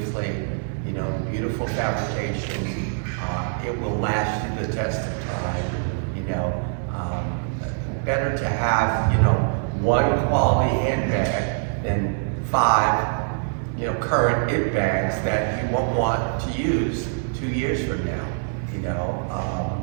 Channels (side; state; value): left; silent; digital silence